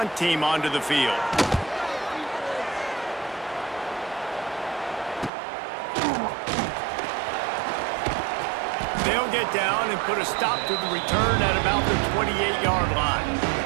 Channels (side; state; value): left; drops out; at 5.3 s